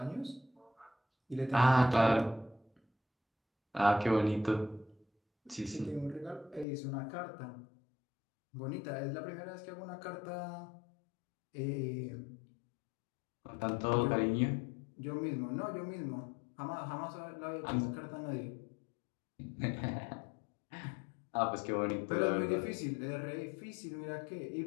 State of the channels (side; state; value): right; drops out; at 6.7 s